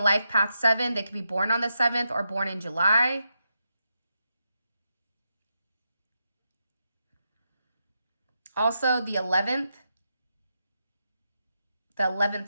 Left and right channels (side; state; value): both; inverted; correlation -0.85